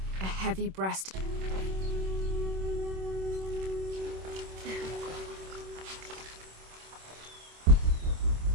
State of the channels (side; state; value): left; late; 26 ms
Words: A heavy breast.